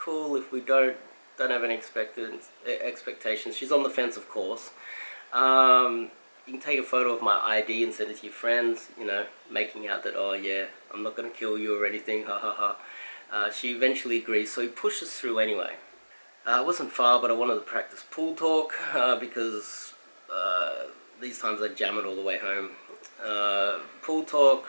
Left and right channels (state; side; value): inverted; both; correlation -1.00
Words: If we don't have any expectations. She's on the fence, of course. You can take a photo of my ID and send it to your friends, making out that, oh yeah, I'm not going to kill you or anything, ha ha ha. She eventually agrees, so he pushes through anyway. It wasn't far, but I wanted to practice pool talk, because these times I jam it all the way home. Pool talk,